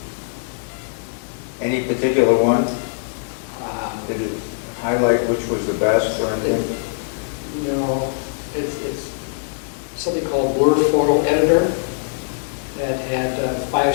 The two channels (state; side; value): silent; right; digital silence